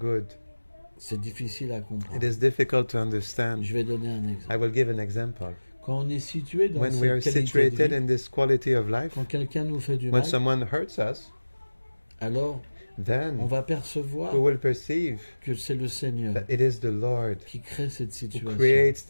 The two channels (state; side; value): inverted; both; correlation -1.00